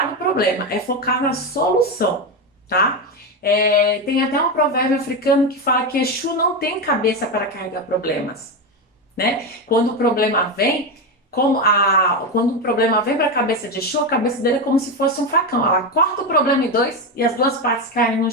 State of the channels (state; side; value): normal; both; correlation 0.13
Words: no problema, é focar na solução, tá? Tem até um provérbio africano que fala que Exu não tem cabeça para carregar problemas, né? Quando o problema vem, quando o problema vem para a cabeça de Exu, a cabeça dele é como se fosse um facão. Ela corta o problema em dois e as duas partes caem no